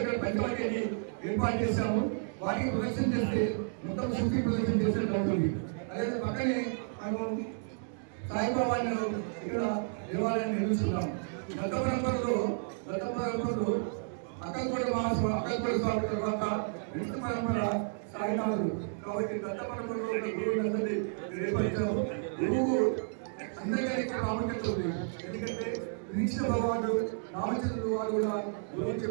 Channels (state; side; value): silent; left; digital silence